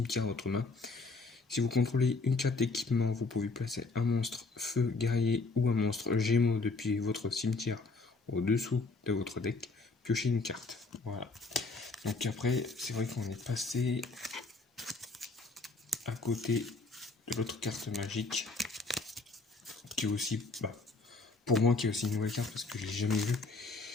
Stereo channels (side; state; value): right; quieter; 3.7 dB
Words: à votre main. Si vous contrôlez une carte d'équipement, vous pouvez placer un monstre feu guerrier ou un monstre gémeaux depuis votre cimetière au-dessous de votre deck, piocher une carte. Voilà. Donc après, c'est vrai qu'on est passé à côté de l'autre carte magique, qui est aussi, pour moi, qui est aussi une nouvelle carte parce que je l'ai jamais vue.